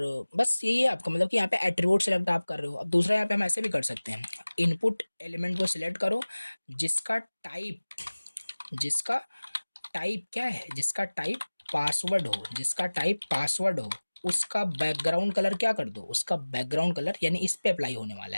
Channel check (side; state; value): both; inverted; correlation -1.00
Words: बस यही है आपका, मतलब कि यहाँ पे एट्रीब्यूट सेलेक्ट आप कर रहे हो। अब दूसरा यहाँ पे हम ऐसे भी कर सकते हैं, इनपुट एलिमेंट को सिलेक्ट करो जिसका टाइप, जिसका टाइप क्या है, जिसका टाइप पासवर्ड हो, जिसका टाइप पासवर्ड हो, उसका बैकग्राउंड कलर क्या कर दो, उसका बैकग्राउंड कलर यानी इस पे अप्लाई होने वाला